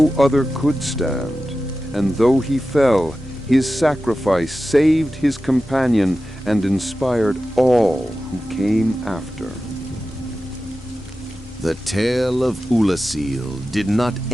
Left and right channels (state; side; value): normal; both; correlation 0.94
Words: other could stand, and though he fell, his sacrifice saved his companion and inspired all who came after. The tale of Ulasil did not